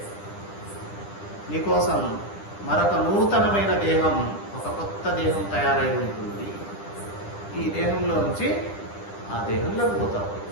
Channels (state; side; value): late; right; 10 ms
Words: నీకోసం మరొక నూతనమైన దేహం, ఒక కొత్త దేహం తయారై ఉంటుంది. ఈ దేహంలో నుంచి ఆ దేహంలోకి పోతావు,